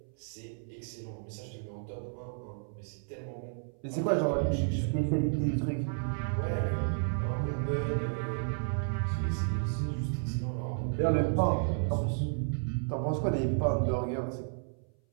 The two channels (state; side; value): silent; left; 56 dB below the other